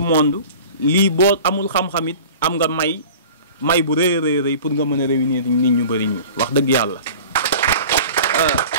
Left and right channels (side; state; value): both; inverted; correlation -0.41